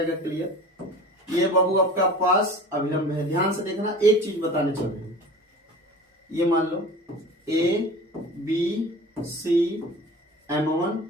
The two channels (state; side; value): normal; both; correlation 0.38